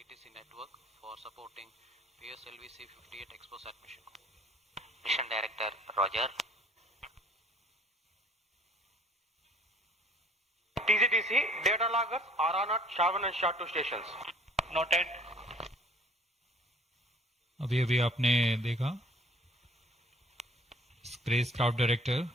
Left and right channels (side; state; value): both; normal; correlation 0.54